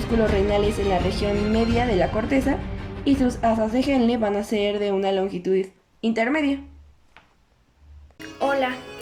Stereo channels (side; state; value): both; identical; correlation 1.00